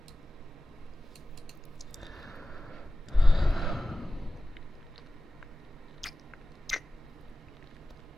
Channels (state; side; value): normal; both; correlation 0.97